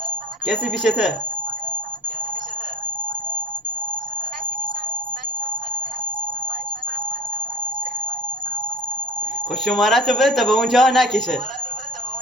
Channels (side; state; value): both; normal; correlation 0.37